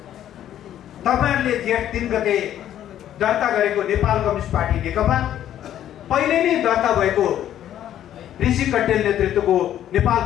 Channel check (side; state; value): right; quieter; 11.3 dB